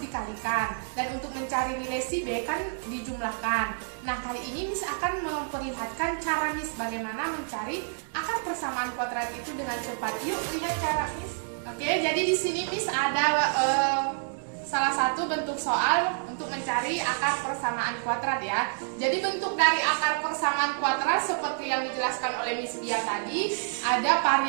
Dan untuk mencari nilai si B kan dijumlahkan. Nah, kali ini Miss akan memperlihatkan cara Miss bagaimana mencari akar persamaan kuadrat itu dengan cepat. Yuk lihat cara Miss. Oke, jadi di sini Miss ada salah satu bentuk soal untuk mencari akar persamaan kuadrat ya. Jadi bentuk dari akar persamaan kuadrat seperti yang dijelaskan oleh Miss Dia tadi, ada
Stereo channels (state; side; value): silent; left; digital silence